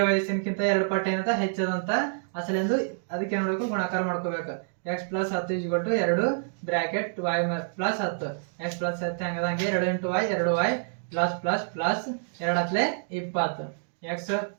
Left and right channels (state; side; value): silent; left; digital silence